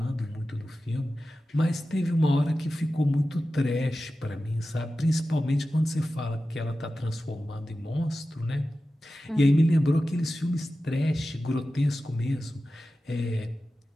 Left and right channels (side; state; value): both; normal; correlation 0.94